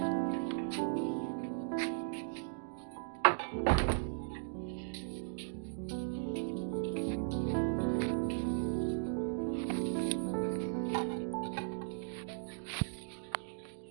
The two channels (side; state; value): left; silent; digital silence